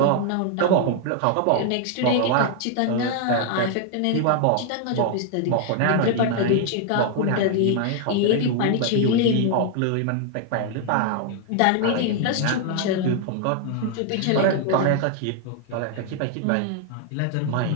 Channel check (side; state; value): both; different; correlation 0.00